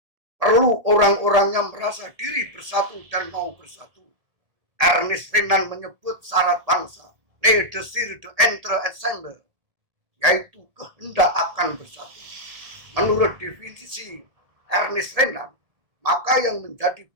Perlu orang-orangnya merasa diri bersatu dan mau bersatu. Ernest Renan menyebut syarat bangsa, le desir de entre ensemble, yaitu kehendak akan bersatu. Menurut definisi Ernest Renan, maka yang menjadi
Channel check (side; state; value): left; late; 1.8 ms